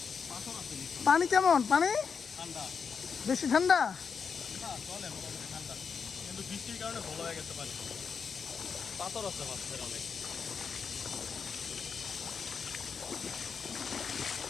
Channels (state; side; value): quieter; right; 6.0 dB